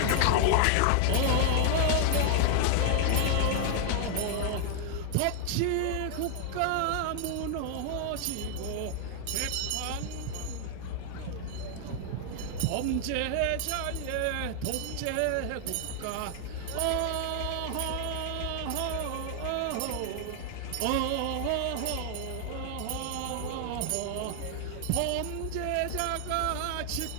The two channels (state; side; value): different; both; correlation 0.00